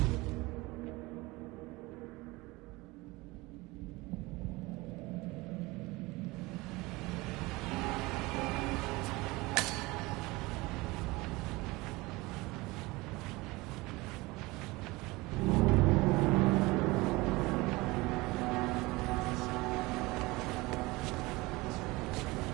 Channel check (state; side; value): quieter; left; 22.2 dB